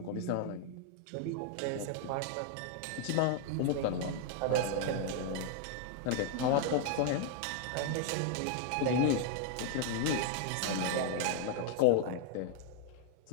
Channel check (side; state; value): both; different; correlation 0.00